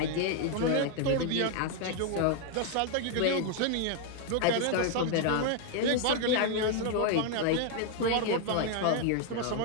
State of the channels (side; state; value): both; different; correlation 0.00